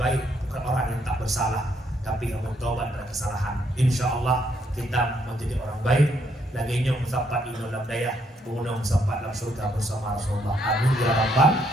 bukan orang yang tak bersalah, tapi yang bertobat dari kesalahan. Insya Allah kita menjadi orang baik. Lagi nyong sampai di dalam daya, mengunang sampai dalam surga bersama Rasulullah. Amin ya rabbal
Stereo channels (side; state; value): both; normal; correlation 0.72